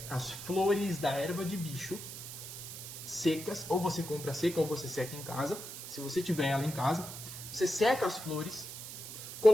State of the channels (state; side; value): noise; right; hiss, 10 dB below the sound